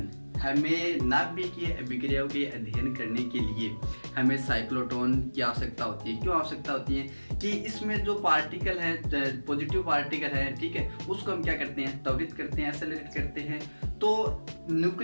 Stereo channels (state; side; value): inverted; both; correlation -1.00